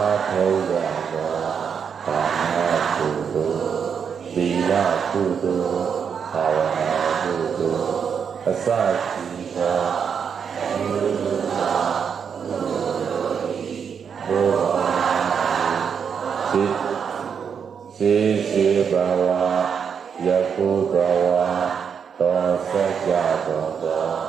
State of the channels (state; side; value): quieter; left; 6.9 dB